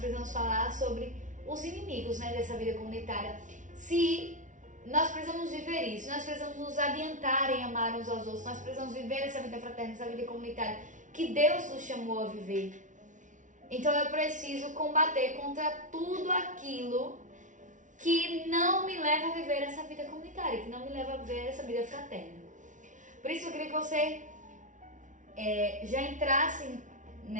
falar sobre os inimigos, né, dessa vida comunitária. Se nós precisamos viver isso, nós precisamos nos adiantar em amar uns aos outros, nós precisamos viver essa vida fraterna, essa vida comunitária que Deus nos chamou a viver. Então eu preciso combater contra tudo aquilo que não me leva a viver essa vida comunitária, que não me leva a viver essa vida fraterna. Por isso eu queria que você já entrasse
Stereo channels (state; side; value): late; left; 0.37 ms